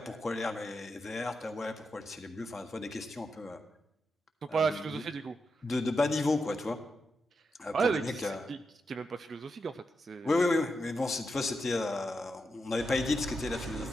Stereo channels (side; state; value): both; normal; correlation 0.86